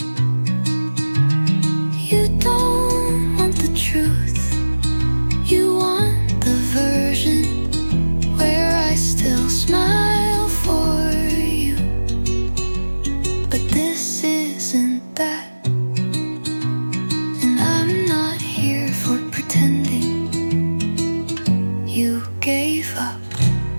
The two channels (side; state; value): both; inverted; correlation -1.00